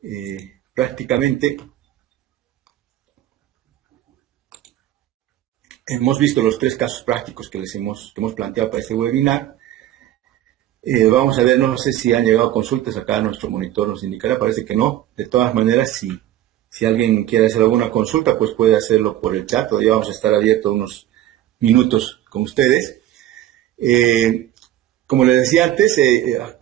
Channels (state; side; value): quieter; left; 13.0 dB